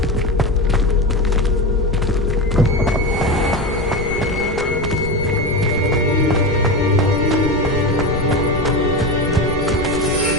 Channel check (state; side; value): noise; left; rumble, 9 dB below the sound